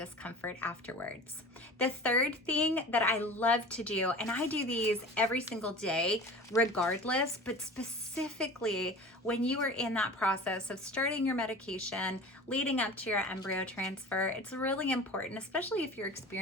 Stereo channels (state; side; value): normal; both; correlation 0.38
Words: afterwards. The third thing that I love to do, and I do these every single day regardless, but specifically when you are in that process of starting your medication leading up to your embryo transfer, it's really important, especially if you're